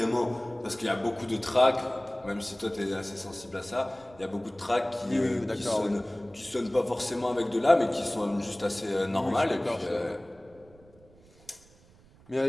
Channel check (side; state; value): right; noise; rumble, 26 dB below the sound